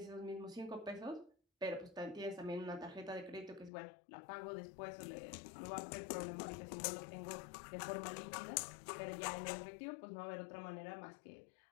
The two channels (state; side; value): drops out; right; at 3.7 s